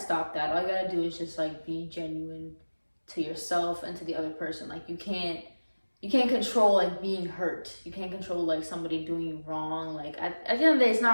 that. All you gotta do is just like be genuine to yourself and to the other person. Like you can't control like being hurt. You can't control like somebody doing you wrong. Like at the end of the day, it's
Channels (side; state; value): both; inverted; correlation -1.00